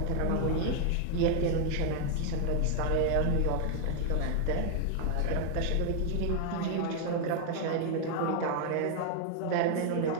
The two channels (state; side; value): different; both; correlation 0.00